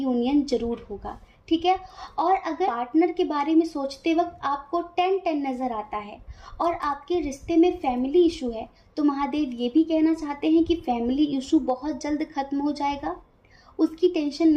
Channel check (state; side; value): identical; both; correlation 1.00